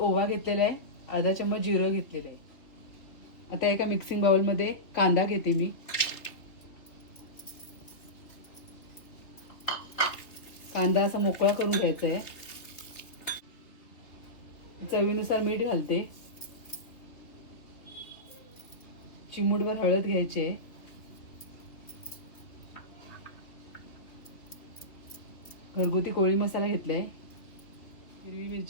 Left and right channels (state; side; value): late; right; 3.4 ms